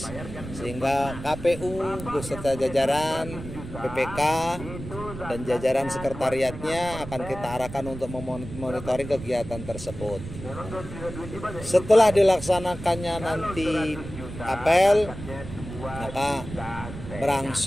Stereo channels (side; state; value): right; noise; rumble, 11 dB below the sound